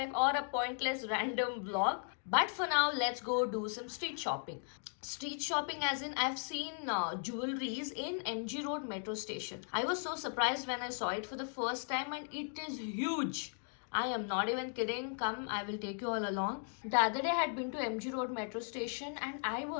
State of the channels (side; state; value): right; silent; 53 dB below the other